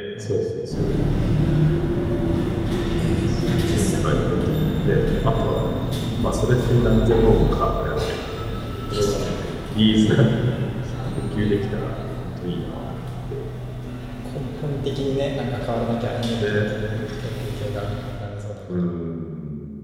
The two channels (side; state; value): both; identical; correlation 1.00